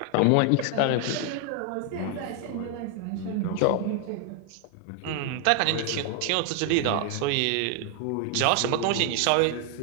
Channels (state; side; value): different; both; correlation 0.00